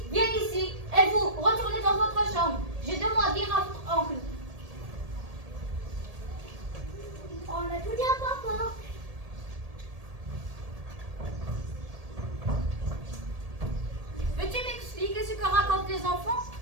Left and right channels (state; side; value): late; left; 1.8 ms